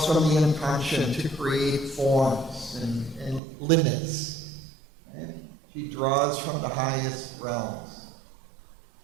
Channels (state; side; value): drops out; left; at 3.4 s